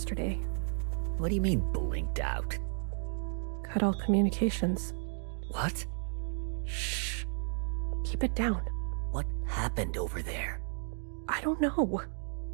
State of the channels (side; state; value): left; silent; 56 dB below the other